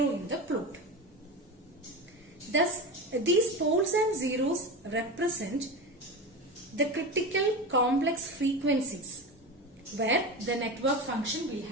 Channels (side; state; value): both; normal; correlation 0.24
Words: in the plot. Thus, these poles and zeros represent the critical complex frequencies where the network function will